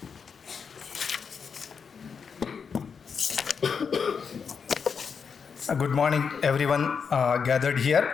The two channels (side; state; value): right; quieter; 6.1 dB